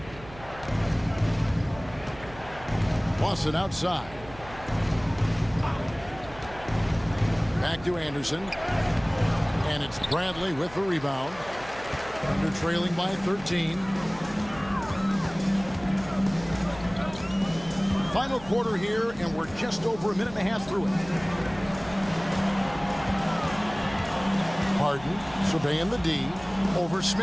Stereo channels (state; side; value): noise; right; hum, 18 dB below the sound